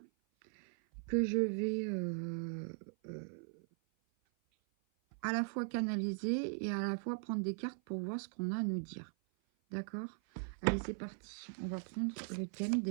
que je vais à la fois canaliser et à la fois prendre des cartes pour voir ce qu'on a à nous dire. D'accord? Allez, c'est parti. On va prendre le thème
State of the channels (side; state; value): left; silent; 51 dB below the other